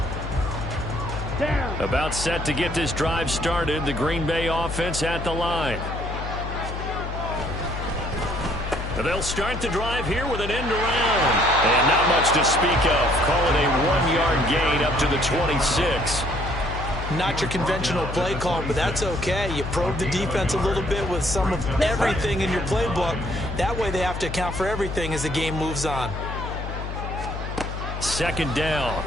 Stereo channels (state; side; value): noise; left; hum, 6 dB below the sound